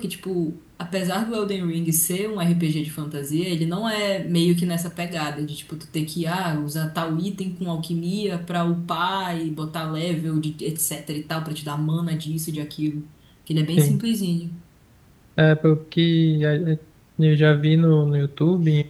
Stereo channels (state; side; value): identical; both; correlation 1.00